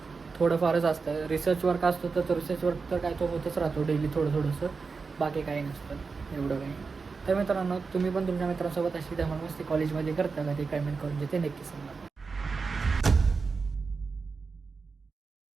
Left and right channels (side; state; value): left; quieter; 4.7 dB